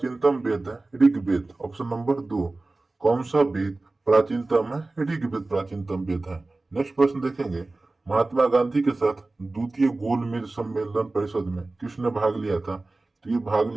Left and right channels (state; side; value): quieter; left; 3.2 dB